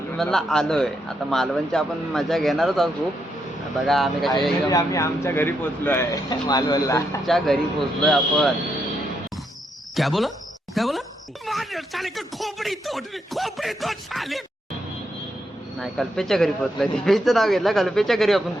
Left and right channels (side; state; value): both; normal; correlation 0.80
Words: आलोय. आता मालवणची आपण मजा घेणारच आहोत खूप. बघा आम्ही कशा आम्ही आमच्या घरी पोहोचलो आहे मालवणला. आमच्या घरी पोहोचलोय आपण. क्या बोला नाही, कल्पेशच्या घरी पोहोचलोय. दीपेशचं नाव घेतलं, कल्पेशच्या घरी आपण